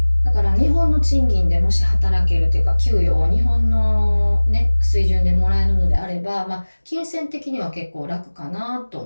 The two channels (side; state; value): both; inverted; correlation -1.00